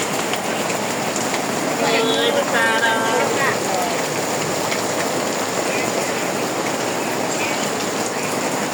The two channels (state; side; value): identical; both; correlation 1.00